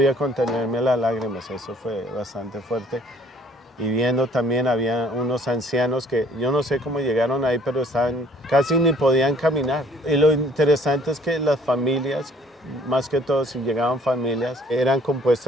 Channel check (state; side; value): normal; both; correlation 0.57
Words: contenerme las lágrimas. Eso fue bastante fuerte. y viendo también había unos ancianos que yo no sé cómo llegaron ahí, pero estaban, casi ni podían caminar. Y lo interesante es que las familias, más que todo si llegaban familias, eran